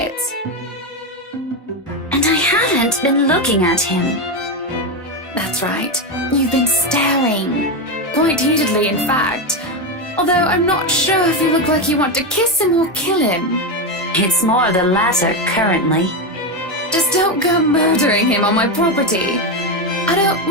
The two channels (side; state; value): both; normal; correlation 0.11